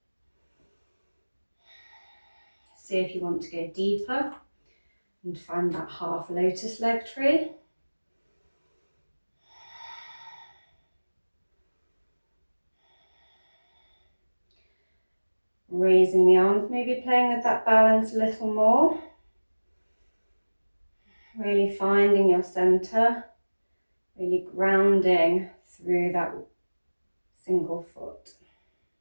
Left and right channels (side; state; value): both; inverted; correlation -1.00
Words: See if you want to go deeper and find that half lotus leg tree. Raising the arms, maybe playing with that balance a little more. Really finding your center, really grounding through that single foot.